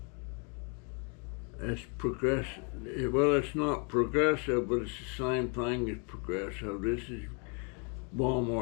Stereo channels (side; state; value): right; quieter; 36.5 dB